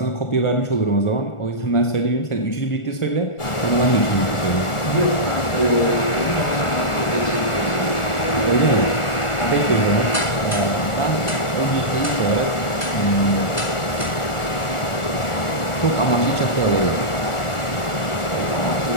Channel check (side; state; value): right; late; 1.4 ms